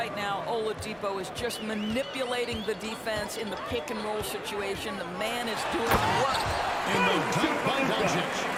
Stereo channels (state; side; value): identical; both; correlation 1.00